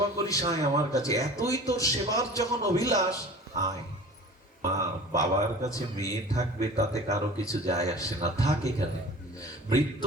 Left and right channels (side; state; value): both; normal; correlation 0.41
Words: করিস, আয় আমার কাছে, এতই তোর সেবার যখন অভিলাষ, আয়। মা, বাবার কাছে মেয়ে থাকবে তাতে কারো কিছু যায় আসে না, থাক এখানে।